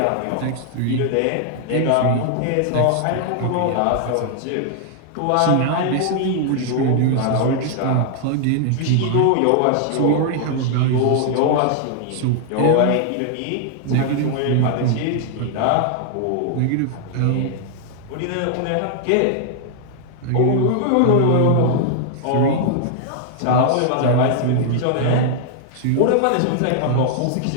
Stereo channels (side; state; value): both; different; correlation 0.00